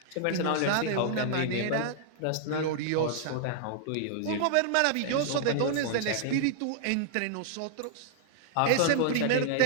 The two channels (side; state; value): both; different; correlation -0.01